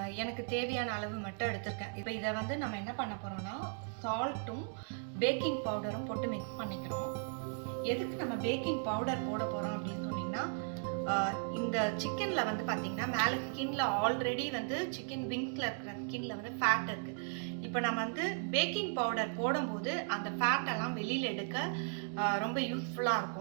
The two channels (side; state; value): left; silent; 53 dB below the other